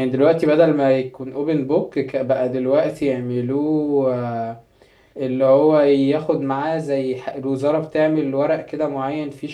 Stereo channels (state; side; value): identical; both; correlation 1.00